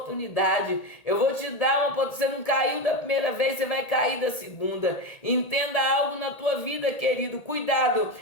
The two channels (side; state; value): right; late; 1.8 ms